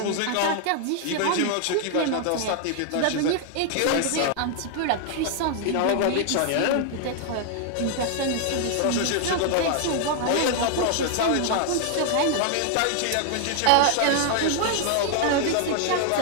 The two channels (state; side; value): different; both; correlation 0.00